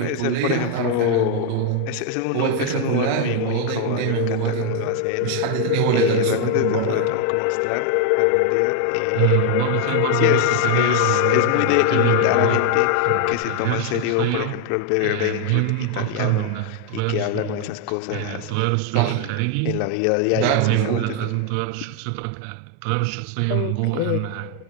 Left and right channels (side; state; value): both; different; correlation 0.00